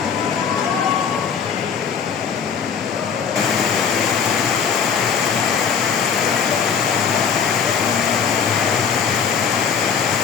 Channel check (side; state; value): right; quieter; 6.7 dB